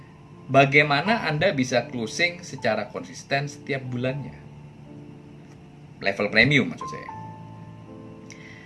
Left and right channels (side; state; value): both; identical; correlation 1.00